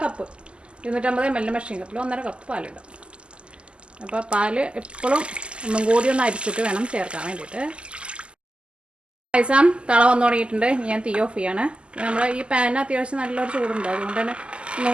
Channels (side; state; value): left; late; 0.052 ms